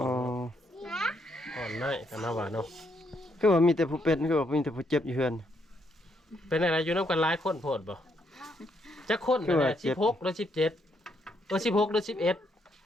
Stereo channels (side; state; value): both; normal; correlation 0.75